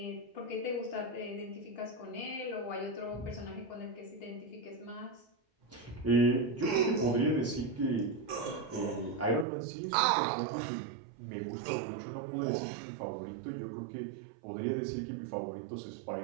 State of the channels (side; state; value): left; drops out; at 9.5 s